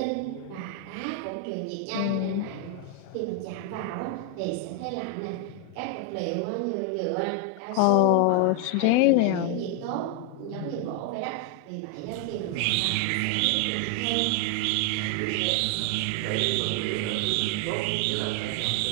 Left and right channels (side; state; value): both; different; correlation 0.00